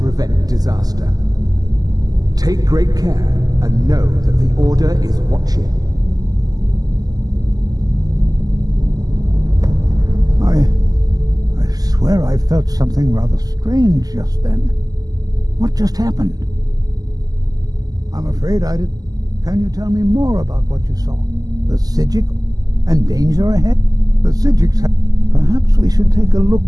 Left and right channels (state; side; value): late; left; 0.18 ms